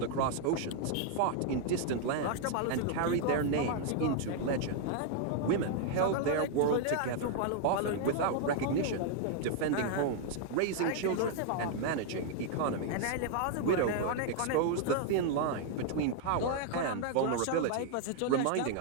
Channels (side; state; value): both; different; correlation 0.00